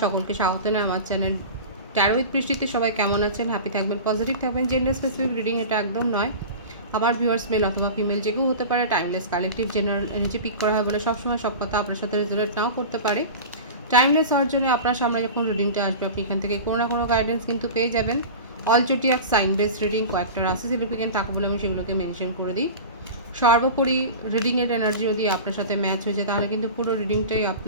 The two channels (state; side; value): inverted; both; correlation -0.32